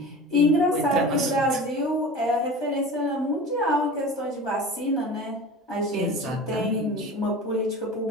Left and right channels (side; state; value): both; normal; correlation 0.35